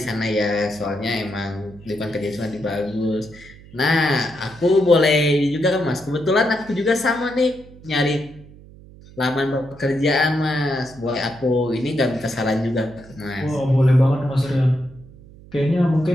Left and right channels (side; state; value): right; noise; hum, 21 dB below the sound